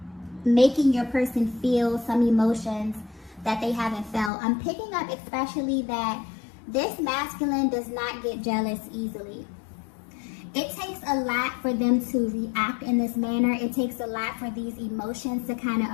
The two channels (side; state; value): right; drops out; at 4.3 s